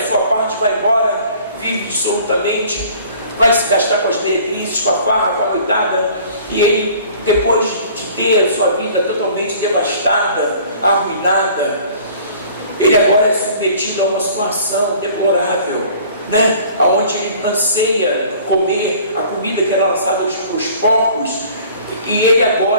sua parte, vai embora, vive absolutamente, vai se gastar com as meretrizes, com a farra, com a noitada, e ele, depois de ter a sua vida totalmente devastada, arruinada, ele agora é submetido a uma situação deplorável, né? Onde ele anseia comer a comida que era lançada aos porcos, e ele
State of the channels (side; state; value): both; inverted; correlation -0.50